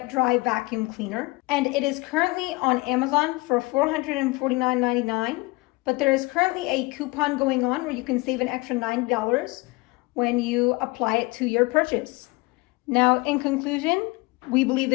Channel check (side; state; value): right; quieter; 24.2 dB